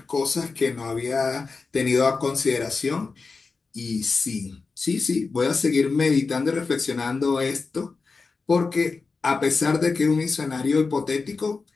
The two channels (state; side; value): quieter; right; 4.4 dB